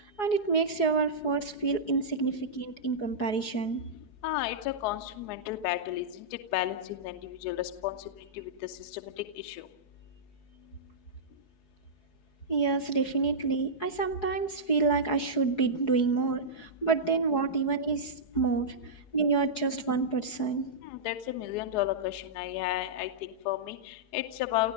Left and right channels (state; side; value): late; right; 4.8 ms